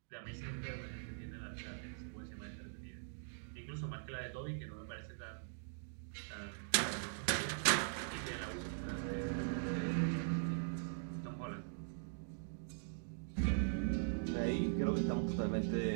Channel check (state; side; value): silent; left; digital silence